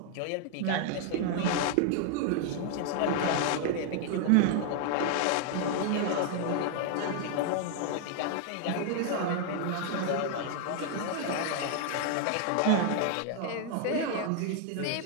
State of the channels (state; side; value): different; both; correlation 0.00